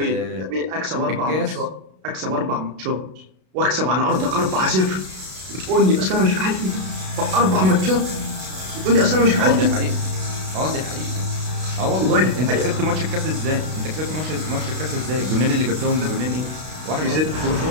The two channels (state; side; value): late; left; 32 ms